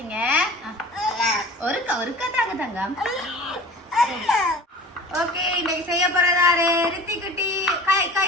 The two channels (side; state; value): both; normal; correlation 0.41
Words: ஒருக்கா தாங்க தங்கம். ஓகே இன்னைக்கு செய்ய போறதாரு ரித்தி குட்டி. கை